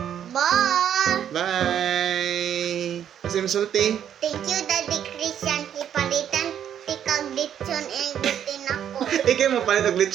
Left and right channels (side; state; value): left; quieter; 9.5 dB